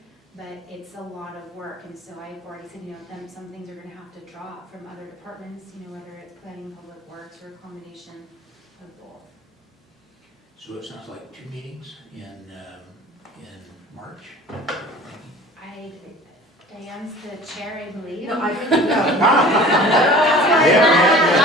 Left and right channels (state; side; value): normal; both; correlation 0.44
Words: But it's a lot of work, and so I've already said, some things are gonna have to drop from other departments, whether it's planning, public works, or accommodation, of both. So it sounds like 2 meetings in March? Diane's the chair, I believe. No, I think, no. Not the